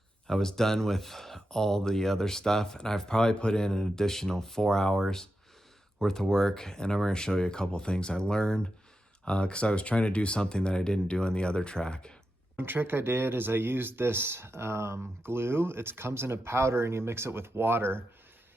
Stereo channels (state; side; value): normal; both; correlation 0.89